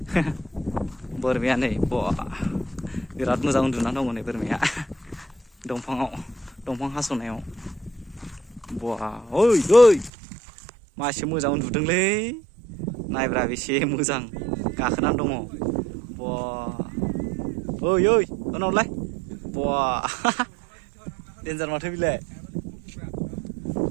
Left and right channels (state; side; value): drops out; left; at 10.1 s